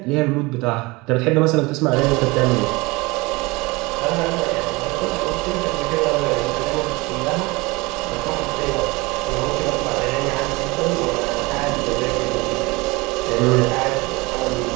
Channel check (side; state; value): left; quieter; 23.9 dB